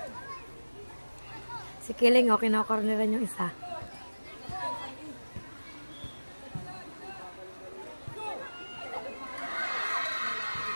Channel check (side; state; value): both; inverted; correlation -1.00